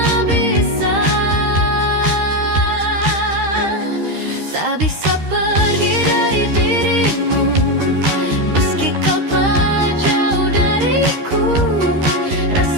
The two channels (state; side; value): late; left; 13 ms